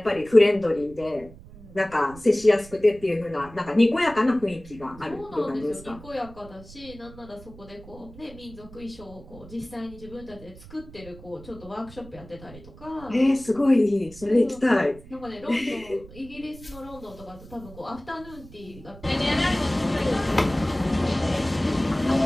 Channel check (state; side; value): noise; right; rumble, 19 dB below the sound